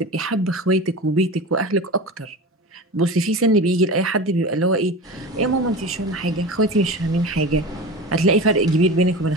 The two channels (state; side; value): normal; both; correlation 0.30